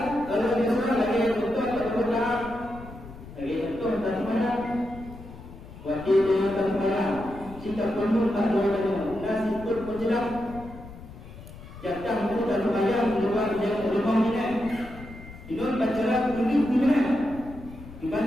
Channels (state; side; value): noise; left; rumble, 15 dB below the sound